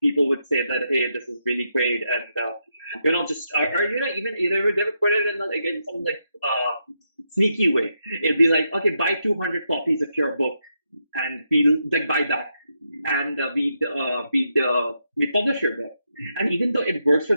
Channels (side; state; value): both; inverted; correlation -0.82